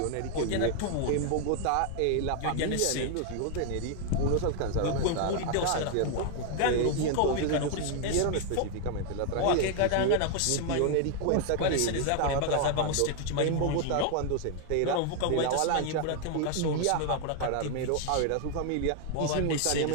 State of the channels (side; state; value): both; different; correlation 0.00